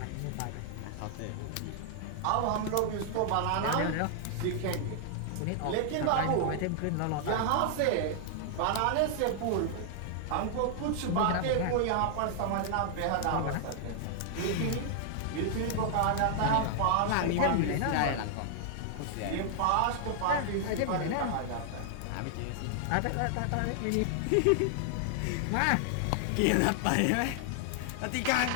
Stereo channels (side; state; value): both; different; correlation 0.00